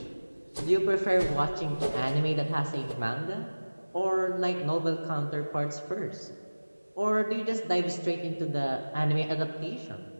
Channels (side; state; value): both; inverted; correlation -1.00